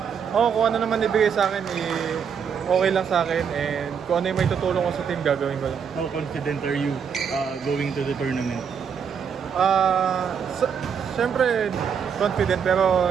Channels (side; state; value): left; quieter; 7.1 dB